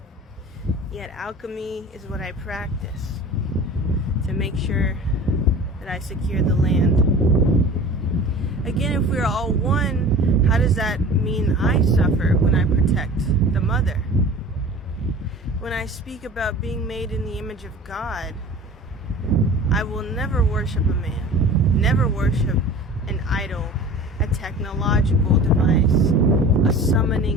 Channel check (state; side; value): normal; both; correlation 0.40